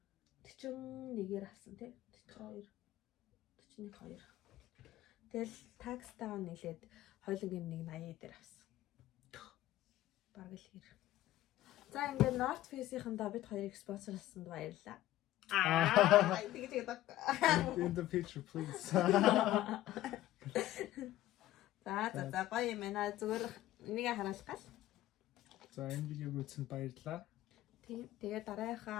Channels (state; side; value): quieter; right; 14.7 dB